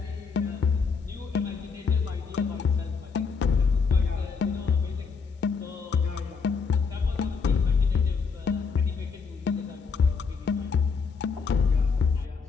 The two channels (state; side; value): quieter; right; 5.3 dB